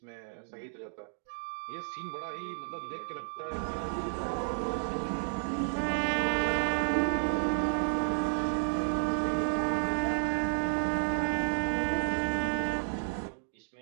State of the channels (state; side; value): silent; left; digital silence